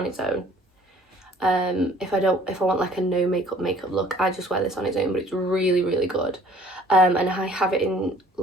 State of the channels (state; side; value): normal; both; correlation 0.55